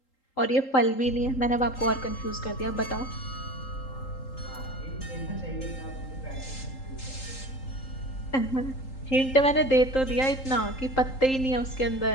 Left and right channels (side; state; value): right; late; 3.8 ms